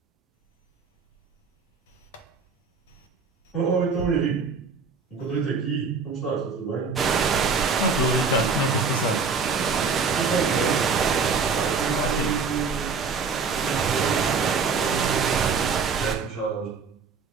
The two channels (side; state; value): left; quieter; 5.1 dB